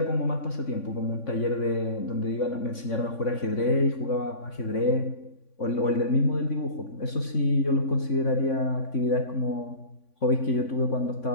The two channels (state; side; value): late; right; 3.5 ms